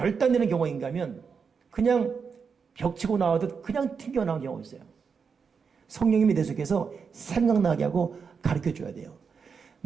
경우인가 하면 그냥 벽치고 나오듯 그냥 튕겨나오는 경우가 있어요. 성령님이 내 속에서 생각나게 하고 가르쳐줘야 돼요.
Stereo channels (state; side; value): quieter; left; 5.8 dB